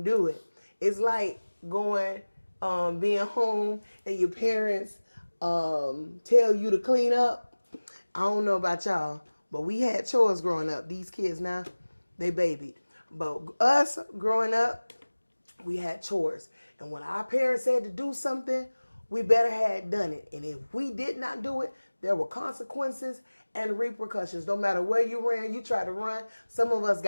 do it. It's like going, being home and your parents tell you to clean up. I don't know about y'all, but we had chores growing up. These kids now, they babied. But us growing up, we had chores. And when our parents said to do something, we better had done it. And if we did not do it, there were consequences and repercussions. No matter where you ran, you tried to run. Some of us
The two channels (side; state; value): both; inverted; correlation -1.00